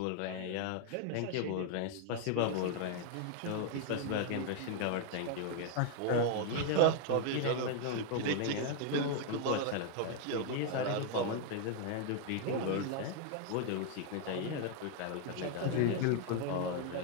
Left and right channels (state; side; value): different; both; correlation 0.00